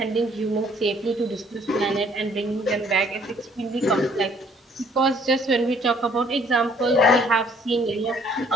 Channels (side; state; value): both; normal; correlation 0.61